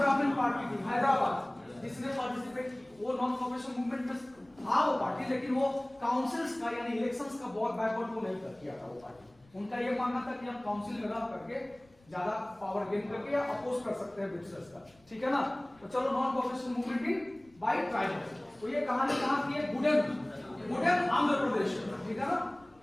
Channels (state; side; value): noise; left; rumble, 30 dB below the sound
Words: पार्टी थी हैदराबाद, जिसने पार्टिसिपेट की। वो नॉन कोऑपरेशन मूवमेंट में था वो पार्टी, लेकिन वो काउंसिल्स का यानी इलेक्शंस का बहुत बैकवर्ड वो नहीं किया था वो पार्टी। उनका ये मानना था कि हम काउंसिल में रह करके ज्यादा पावर गेन करके या अपोज कर सकते हैं ब्रिटिशर्स का। ठीक है ना? तो चलो non cooperation movement in by tribals. तो ये कहानी कहां की है? गुडेन आंध्र प्रदेश। ठीक है ना?